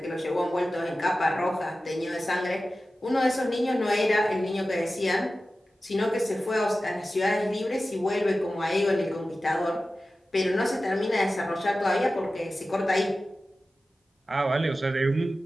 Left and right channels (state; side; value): normal; both; correlation 0.95